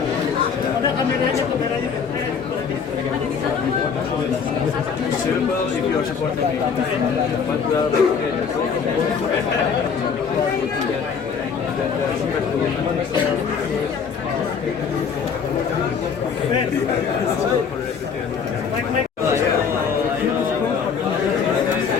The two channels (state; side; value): quieter; right; 6.3 dB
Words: if you are supporting me, but we are